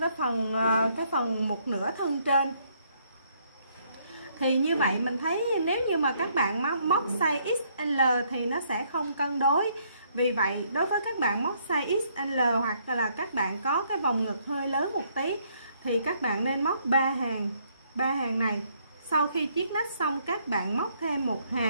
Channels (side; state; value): both; inverted; correlation -0.69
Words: phần một nửa thân trên. Thì như vậy mình thấy nếu như mà các bạn móc size XL thì nó sẽ không cân đối. Vì vậy đối với các bạn móc size XL hoặc là các bạn có cái vòng ngực hơi lớn một tí thì các bạn nên móc 3 hàng này. Sau khi chiết nách xong, các bạn móc thêm một